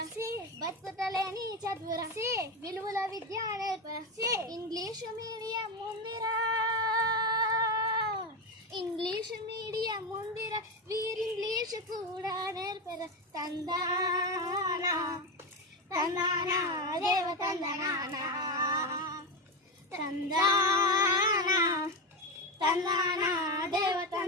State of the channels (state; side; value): normal; both; correlation 0.15